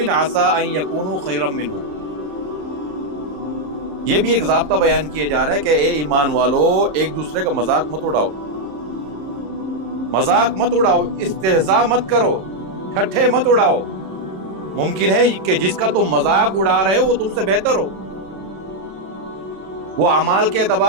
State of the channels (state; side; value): late; left; 26 ms